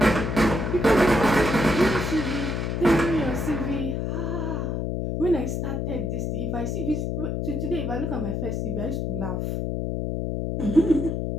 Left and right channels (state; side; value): noise; left; hum, 1 dB below the sound